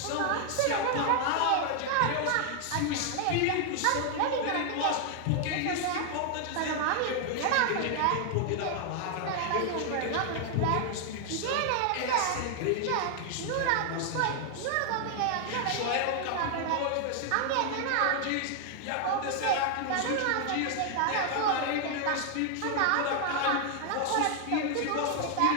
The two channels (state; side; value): different; both; correlation 0.00